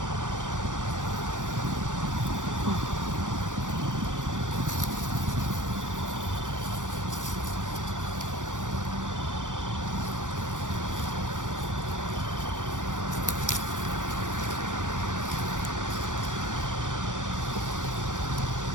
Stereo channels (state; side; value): late; left; 0.87 ms